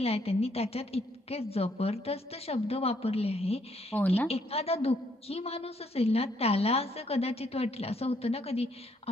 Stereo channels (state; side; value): normal; both; correlation 0.70